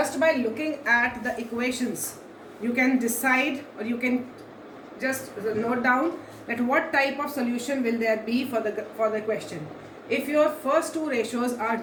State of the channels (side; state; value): both; identical; correlation 1.00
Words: by looking at the equations, you can decide, or you can just note down that what type of solution will there be for the question. If your first two ratios are